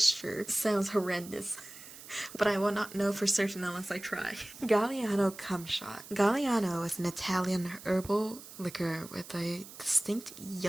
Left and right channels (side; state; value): right; noise; hiss, 16 dB below the sound